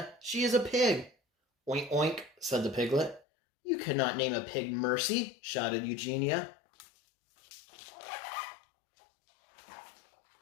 "She is a pig." "Oink, oink," said the piglet. "You cannot name a pig Mercy," shouted Eugenia.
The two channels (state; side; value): drops out; right; at 3.2 s